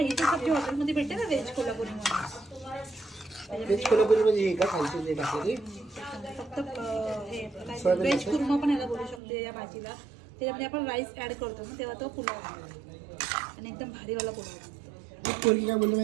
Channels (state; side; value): drops out; left; at 9.2 s